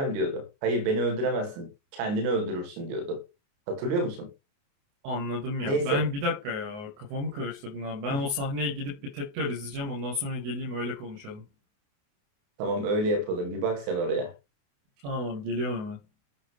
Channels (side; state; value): left; late; 28 ms